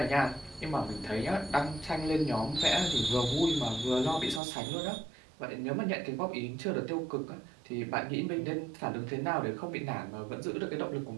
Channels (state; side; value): drops out; left; at 4.4 s